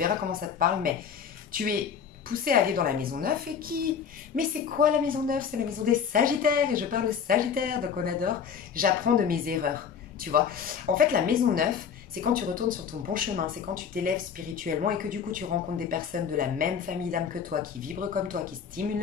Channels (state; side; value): quieter; right; 7.2 dB